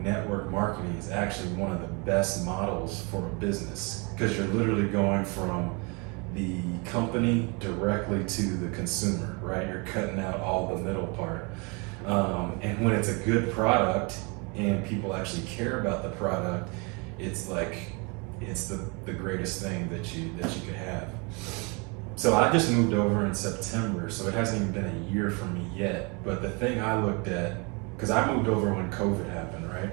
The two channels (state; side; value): quieter; left; 31.1 dB